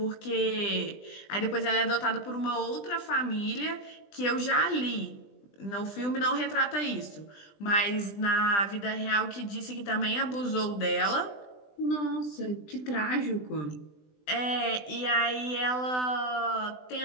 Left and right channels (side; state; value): right; late; 20 ms